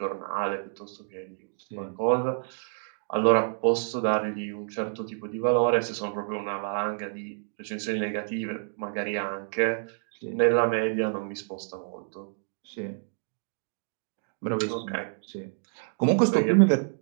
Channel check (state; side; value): silent; left; digital silence